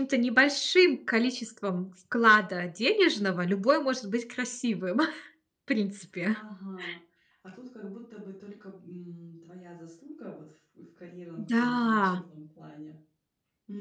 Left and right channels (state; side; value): identical; both; correlation 1.00